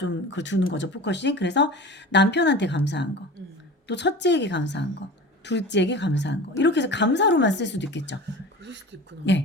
그걸 두는 거죠, 포커싱. 그래서 남편한테 감사한 거, 또 첫째에게 감사한 거, 둘째에게 감사한 거. 이렇게 해서 감사로만 쓸 수도 있겠죠. 그럴 수도 있구나.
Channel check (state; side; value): normal; both; correlation 0.35